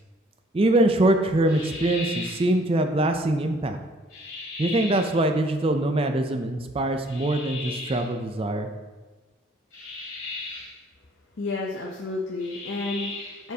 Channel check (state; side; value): normal; both; correlation 0.60